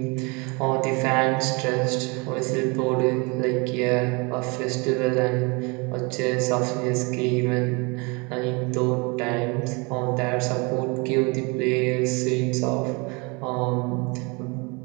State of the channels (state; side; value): quieter; left; 29.3 dB